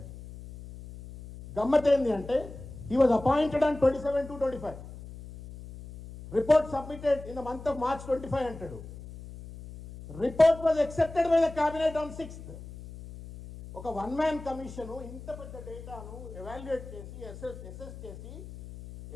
గమ్మత్ ఏంది అంటే he was appointed on 27/2/25. Report submitted in the month of March 25 అంటాడు. Report was accepted by the cabinet on 6th. ఒక 1 మ్యాన్ కమిషన్ ఇంత పెద్ద డేటాను ఎవాల్యుయేట్ చేసి అసెస్ చేసి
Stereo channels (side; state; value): left; noise; hum, 14 dB below the sound